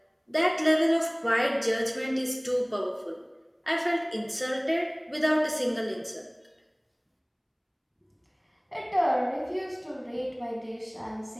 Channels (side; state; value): both; identical; correlation 1.00